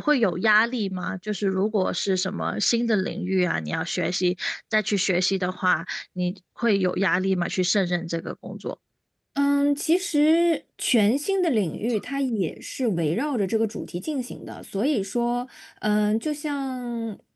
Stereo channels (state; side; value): identical; both; correlation 1.00